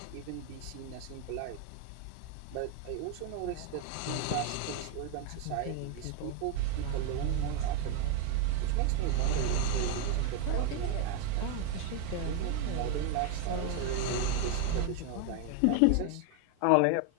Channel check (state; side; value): different; both; correlation 0.01